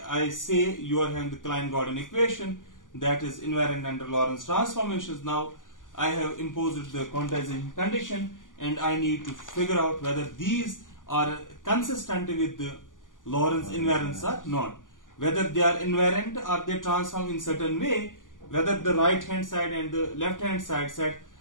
I say you are having the Klein-Gordon equation that is invariant under Lorentz transformations. Now I have imposed the quantization condition, and I need to figure out whether these are consistent with the Lorentz invariants or not. Whether they are invariant or they transform in certain way, whether the right hand side and the left hand side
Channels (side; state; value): right; late; 0.88 ms